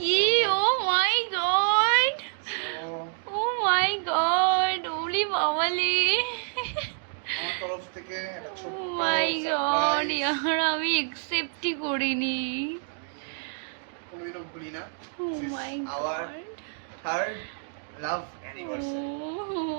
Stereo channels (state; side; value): silent; left; digital silence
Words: ও মাই গড, ও মাই গড, ওলি বাবালি, আমার তরফ থেকে একটা ও ছোট্ট মাই গড, সারপ্রাইজ। ইয়ার আমি একসেপ্টই করিনি। কোনোদিনও ভুলি না। ও This is my our god, third love anniversary.